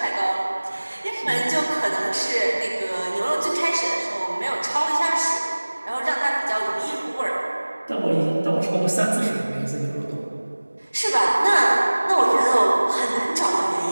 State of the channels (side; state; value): both; inverted; correlation -1.00